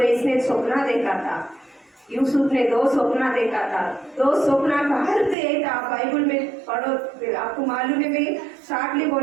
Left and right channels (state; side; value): drops out; left; at 5.4 s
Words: इसने सपना देखा था, यूसुफ ने 2 सपना देखा था। 2 सपना का अर्थ ये था, बाइबल में पढ़ो, आपको मालूम है, मैं शार्टली